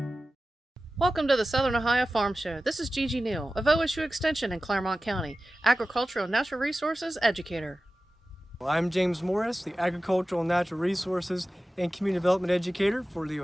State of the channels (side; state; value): both; normal; correlation 0.95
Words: Welcome to the Southern Ohio Farm Show. This is Gigi Neal of OSU Extension in Claremont County, Agricultural and Natural Resources Educator. I'm James Morris, the Agricultural and Natural Resources and Community Development Educator for the